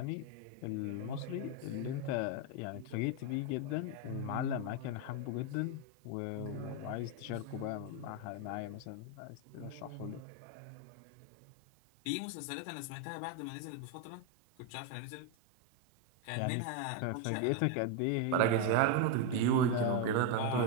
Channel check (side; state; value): both; different; correlation 0.02